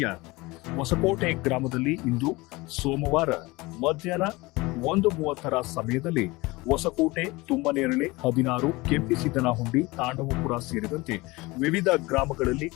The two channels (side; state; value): right; quieter; 22.4 dB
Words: ಹೊಸಕೋಟೆ ಗ್ರಾಮದಲ್ಲಿ ಇಂದು ಸೋಮವಾರ ಮಧ್ಯಾಹ್ನ 1:30 ಸಮಯದಲ್ಲಿ ಹೊಸಕೋಟೆ, ತುಮ್ಮನೇರಳೆ, 16, ಕೆಂಪಿಸಿದ್ದನಹುಂಡಿ, ತಾಂಡವಪುರ ಸೇರಿದಂತೆ ವಿವಿಧ ಗ್ರಾಮಗಳಲ್ಲಿ